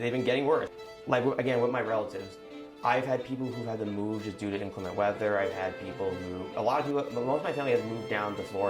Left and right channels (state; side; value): identical; both; correlation 1.00